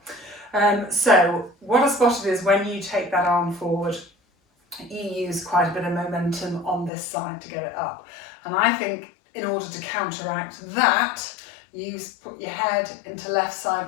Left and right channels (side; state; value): right; drops out; at 6.9 s